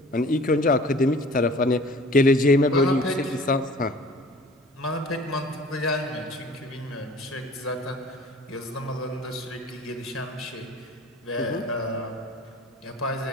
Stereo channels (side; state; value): both; normal; correlation 0.47